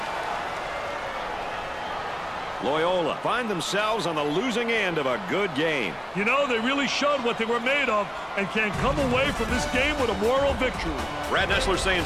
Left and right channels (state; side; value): identical; both; correlation 1.00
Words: Loyola find themselves on the losing end of a good game. You know, they really showed what they were made of and can come away from this game with a moral victory. Brad Nessler saying